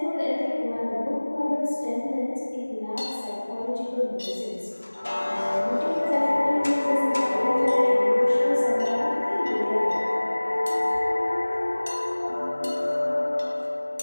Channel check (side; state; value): both; inverted; correlation -1.00